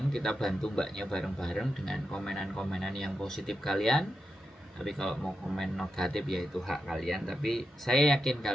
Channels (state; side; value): normal; both; correlation 0.88